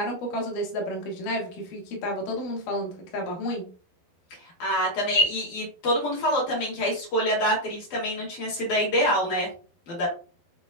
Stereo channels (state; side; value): late; right; 12 ms